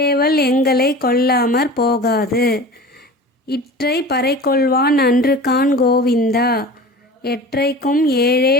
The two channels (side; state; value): both; normal; correlation 0.37